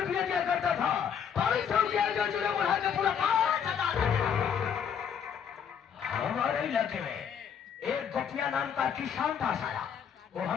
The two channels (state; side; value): quieter; right; 7.8 dB